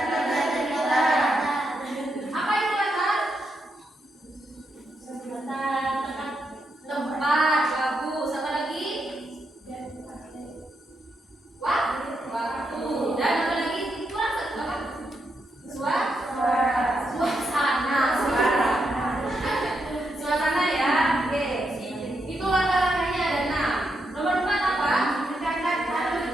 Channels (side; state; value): both; normal; correlation 0.82